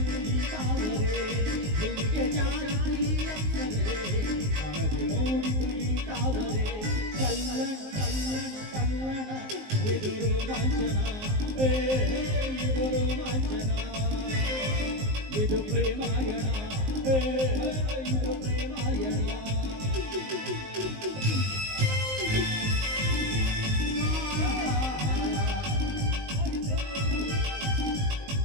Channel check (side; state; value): left; late; 19 ms